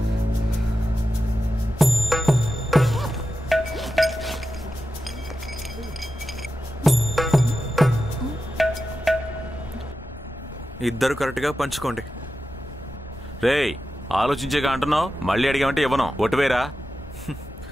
ఇద్దరు కరెక్ట్ గా పంచుకోండి. రేయ్ ఆలోచించేగా అంటున్నావు, మళ్ళీ అడిగామంటే ఇవ్వను. ఒట్టువేరా.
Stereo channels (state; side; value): normal; both; correlation 0.91